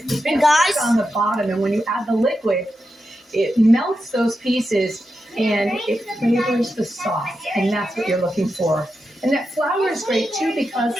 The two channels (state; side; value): normal; both; correlation 0.88